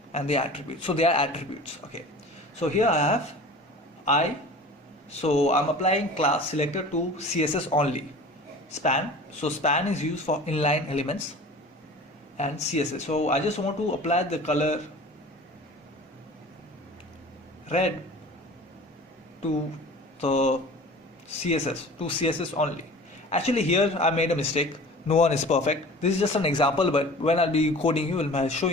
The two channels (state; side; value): normal; both; correlation 0.41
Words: and the attributes. So they are attributes. Okay, so here I have I, so I'm applying class selector to CSS only. Span, so span is used for inline elements and CSS. So I just want to apply the color red to the CSS only. Actually here I made a mistake. No one is perfect. This is just an example, but when I'll be coding you, when I'll show